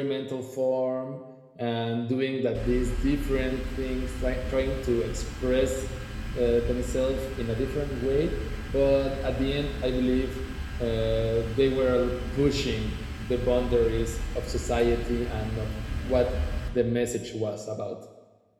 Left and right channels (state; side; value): identical; both; correlation 1.00